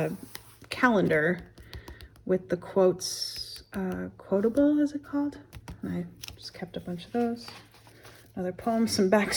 calendar with the quotes, quotable, is it called? And I just kept a bunch of those. Another poem, some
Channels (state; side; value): identical; both; correlation 1.00